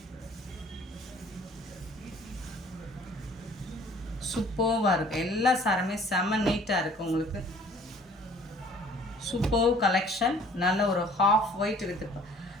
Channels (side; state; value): both; normal; correlation 0.54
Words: சூப்பர்வாக இருக்குது. எல்லா சாருமே செம்ம நீட்டாக இருக்குது உங்களுக்கு. Super collection. நல்ல ஒரு ஹாஃப் ஒயிட் வித்